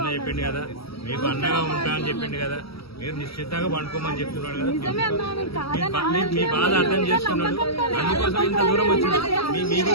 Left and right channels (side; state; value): right; late; 0.76 ms